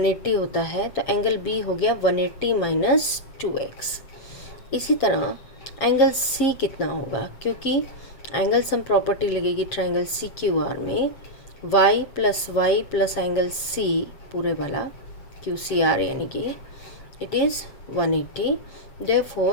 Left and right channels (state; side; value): late; right; 7.7 ms